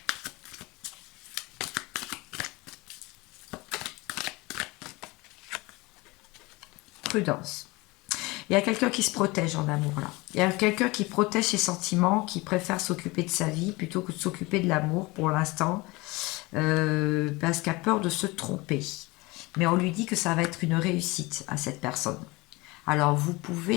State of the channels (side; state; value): right; quieter; 23.3 dB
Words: Prudence. Il y a quelqu'un qui se protège en amour, là. Il y a quelqu'un qui protège ses sentiments, qui préfère s'occuper de sa vie plutôt que de s'occuper de l'amour pour l'instant, parce qu'il a peur de se tromper. Mais on lui dit que ça va être une réussite à cette personne. Alors, vous